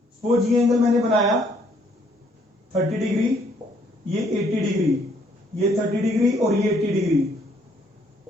सपोज ये एंगल मैंने बनाया 30 डिग्री, ये 80 डिग्री, ये 30 डिग्री और ये 80 डिग्री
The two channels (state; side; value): normal; both; correlation 0.66